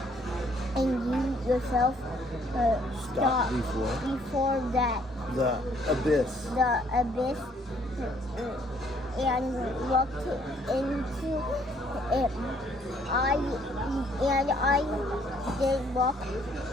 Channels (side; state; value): both; normal; correlation 0.64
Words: and you yourself Stop before that the abyss. And looked into it. I did look.